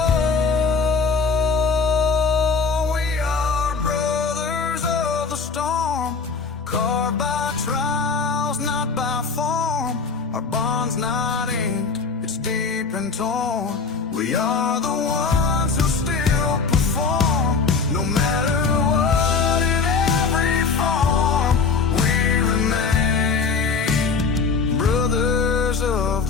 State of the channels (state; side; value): quieter; right; 4.9 dB